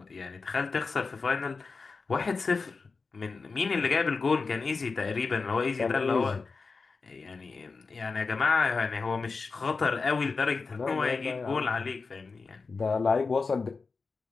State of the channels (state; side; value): quieter; right; 4.4 dB